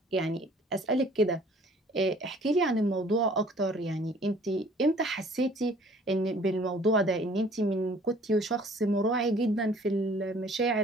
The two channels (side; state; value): both; normal; correlation 0.54